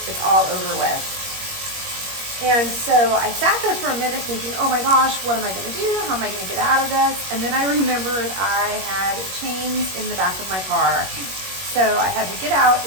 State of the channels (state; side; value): late; left; 21 ms